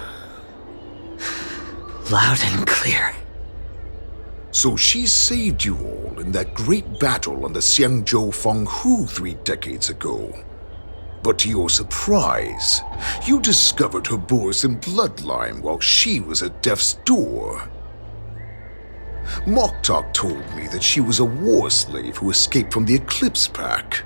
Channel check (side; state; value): both; inverted; correlation -1.00